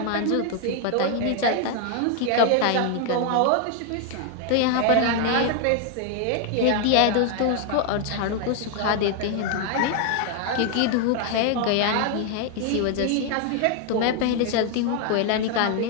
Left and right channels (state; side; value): different; both; correlation 0.00